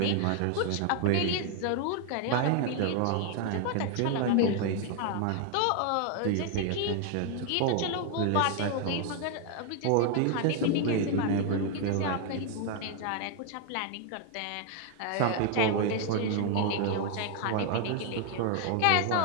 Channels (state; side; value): different; both; correlation 0.00